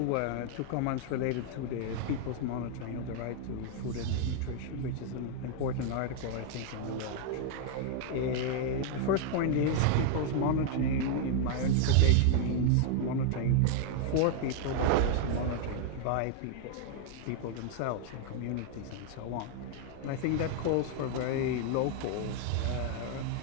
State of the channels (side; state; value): both; different; correlation 0.00